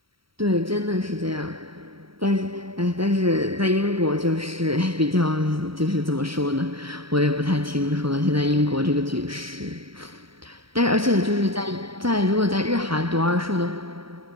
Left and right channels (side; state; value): left; late; 0.75 ms